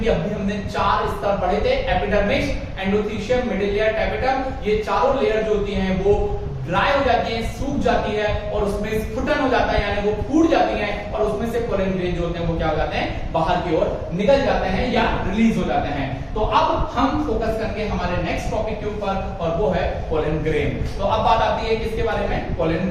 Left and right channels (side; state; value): both; identical; correlation 1.00